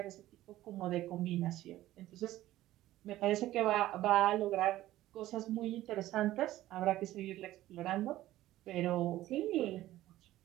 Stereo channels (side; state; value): left; quieter; 15.0 dB